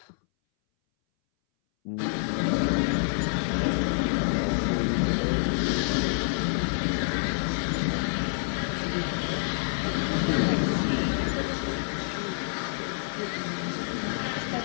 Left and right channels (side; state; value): right; silent; 59 dB below the other